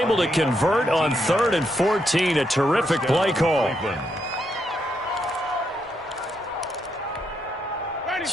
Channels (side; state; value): both; normal; correlation 0.79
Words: to convert on 3rd and 14. A terrific play call.